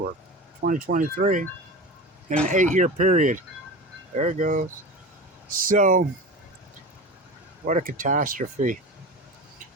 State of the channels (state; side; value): normal; both; correlation 0.30